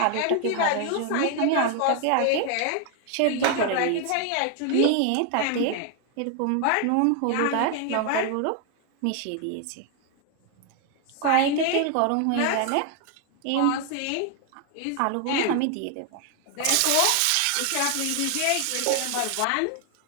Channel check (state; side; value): different; both; correlation 0.00